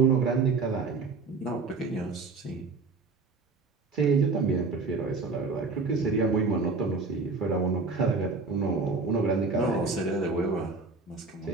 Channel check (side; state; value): left; quieter; 4.2 dB